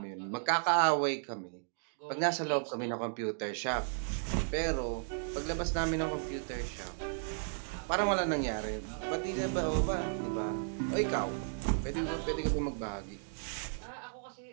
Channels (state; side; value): silent; left; digital silence